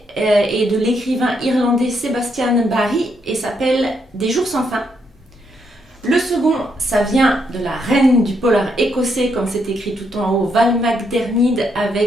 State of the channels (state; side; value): normal; both; correlation 0.77